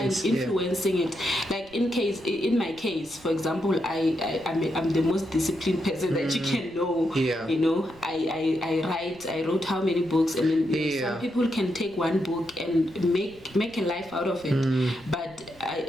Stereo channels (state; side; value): noise; right; rumble, 24 dB below the sound